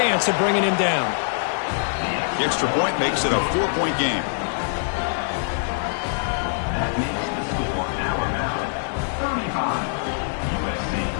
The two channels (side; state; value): right; silent; 63 dB below the other